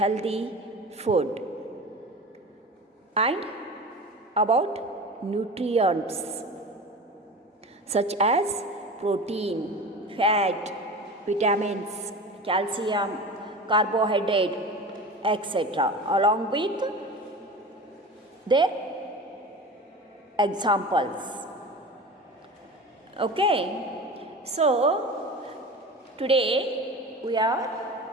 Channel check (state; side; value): normal; both; correlation 0.33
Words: food, and about nutrients such as protein, fat, vitamins, calcium, carbohydrate, etc., along with their examples. Okay, so today we are